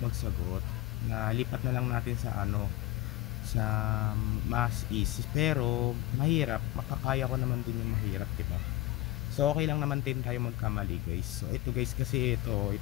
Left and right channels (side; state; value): right; quieter; 18.0 dB